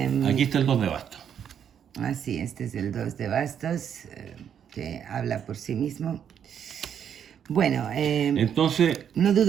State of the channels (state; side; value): quieter; left; 8.6 dB